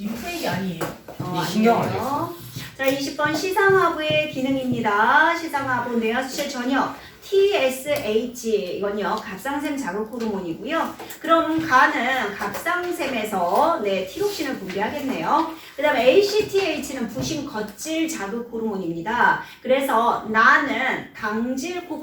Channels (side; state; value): both; identical; correlation 1.00